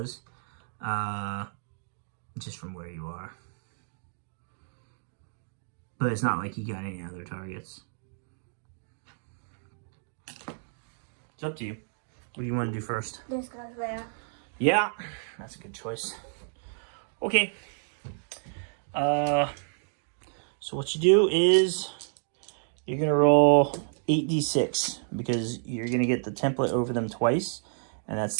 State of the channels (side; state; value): left; silent; digital silence